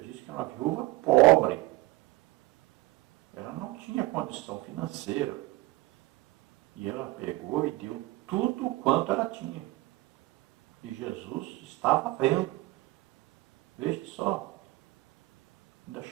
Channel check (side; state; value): left; quieter; 19.8 dB